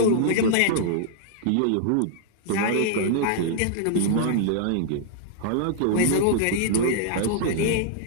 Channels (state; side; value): different; both; correlation -0.01